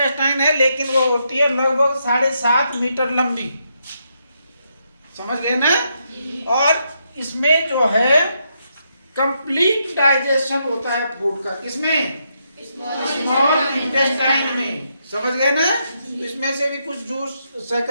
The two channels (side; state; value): both; inverted; correlation -0.79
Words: है, लेकिन वो होती है लगभग 7.5 मीटर लंबी। समझ गए ना? और इसमें जो है कंप्लीट डाइजेशन होता है फूड का। किसमें? स्मॉल इंटेस्टाइन में। समझ गए ना? इसमें से भी कुछ जूस